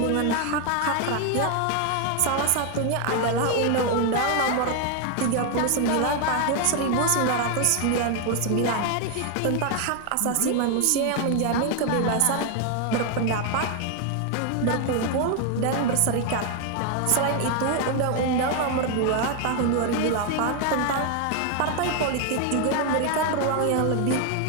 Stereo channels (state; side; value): different; both; correlation 0.01